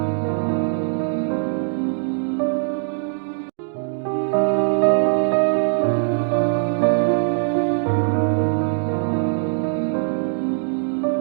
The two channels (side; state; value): left; silent; digital silence